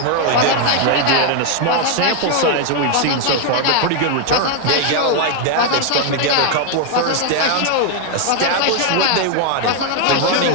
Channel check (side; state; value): both; different; correlation 0.00